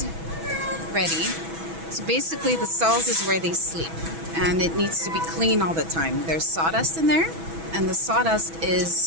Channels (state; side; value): late; left; 6.1 ms